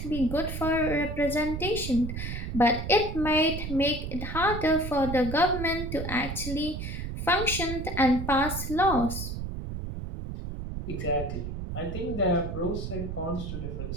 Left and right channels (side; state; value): right; noise; rumble, 6 dB below the sound